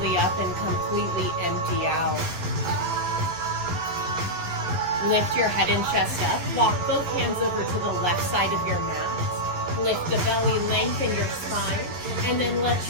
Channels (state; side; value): late; left; 12 ms